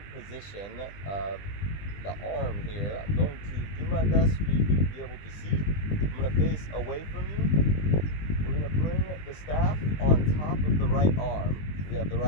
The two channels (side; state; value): right; late; 20 ms